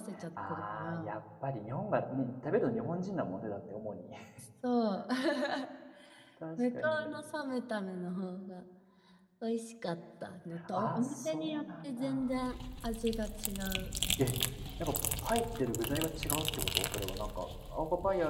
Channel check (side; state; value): both; identical; correlation 1.00